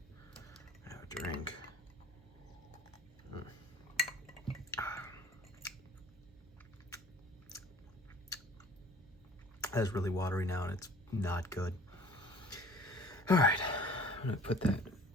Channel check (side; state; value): both; normal; correlation 0.48